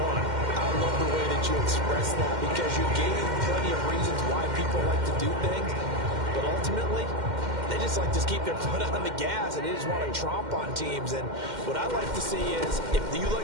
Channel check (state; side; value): late; left; 2.1 ms